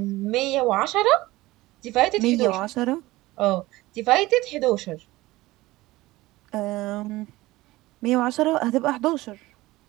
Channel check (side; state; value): left; quieter; 18.8 dB